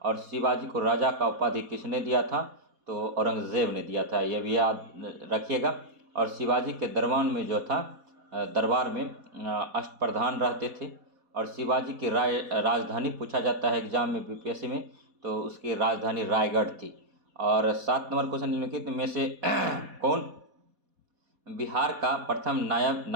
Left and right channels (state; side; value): late; left; 4.2 ms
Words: और शिवाजी को राजा का उपाधि किसने दिया था? तो औरंगजेब ने दिया था, यह भी याद रखिएगा। और शिवाजी के दरबार में अष्टप्रधान रहते थे। और शिवाजी की राजधानी पूछा जाता है एग्जाम में बीपीएससी में, तो उसकी राजधानी रायगढ़ थी। और 7 नंबर क्वेश्चन निम्नलिखित में से कौन बिहार का प्रथम नायब